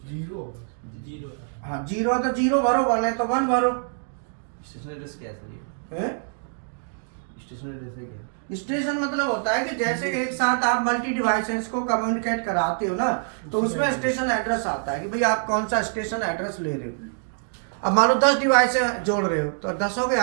हाँ 0 तो 0 भरो, 1 है तो 1 भरो। स्टेशन एड्रेस क्या है सर है? स्टेशन एड्रेस है क्या? स्टेशन मतलब होता है कि जैसे एक साथ आप मल्टी डिवाइसेस को कम्युनिकेट कराते हो ना, तो उसमें स्टेशन एड्रेस आता है कि भाई आप कौन सा स्टेशन एड्रेस ले रहे हो। अब मान लो 10 डिवाइस जोड़ रहे हो तो 10 के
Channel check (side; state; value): left; silent; 62 dB below the other